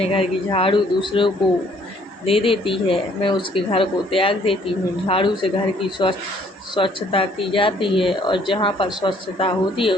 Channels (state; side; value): normal; both; correlation 0.62